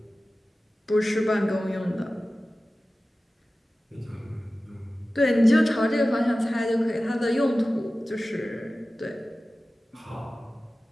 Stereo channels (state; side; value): normal; both; correlation 0.96